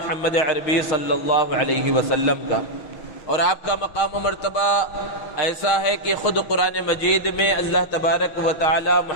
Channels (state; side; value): late; right; 6.1 ms